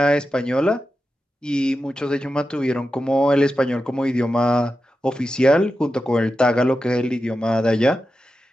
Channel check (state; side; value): normal; both; correlation 0.91